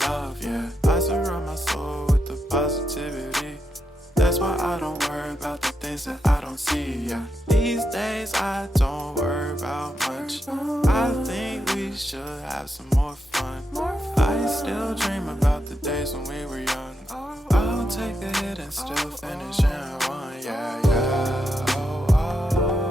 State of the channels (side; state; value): both; normal; correlation 0.84